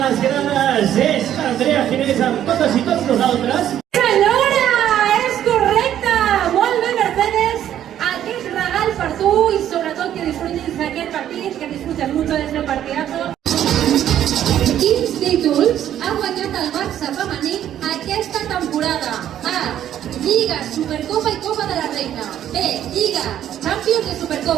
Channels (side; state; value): left; quieter; 11.0 dB